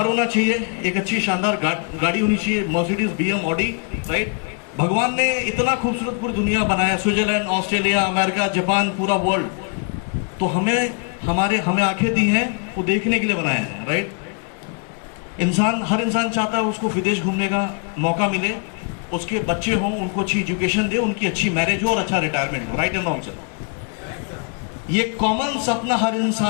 होना चाहिए, एक अच्छी शानदार गाड़ी होनी चाहिए, मर्सिडीज, बीएम, ऑडी, राइट। भगवान ने इतना खूबसूरत पूरी दुनिया बनाया, स्विट्जरलैंड, ऑस्ट्रेलिया, अमेरिका, जापान, पूरा वर्ल्ड, तो हमें आंखें दी हैं वो देखने के लिए बनाया है, राइट। हर इंसान चाहता है उसको विदेश घूमने का मौका मिले, उसके बच्चे हों, उनको अच्छी एजुकेशन दे, उनकी अच्छी मैरिज हो और अच्छा रिटायरमेंट हो, राइट एंड रॉन्ग सर। ये कॉमन सपना हर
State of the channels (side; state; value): right; quieter; 39.3 dB